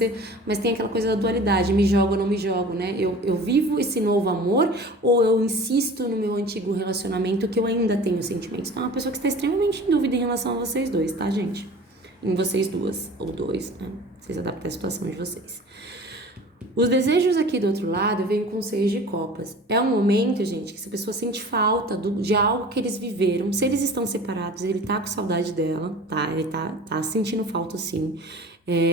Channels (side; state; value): both; normal; correlation 0.41